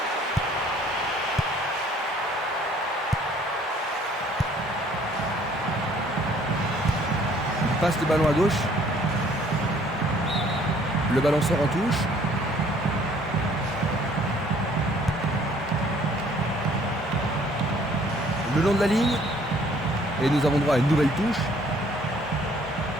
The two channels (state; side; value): normal; both; correlation 0.59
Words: Il passe le ballon à gauche. Le ballon sort en touche. Le long de la ligne. Et nous avons droit à une nouvelle touche.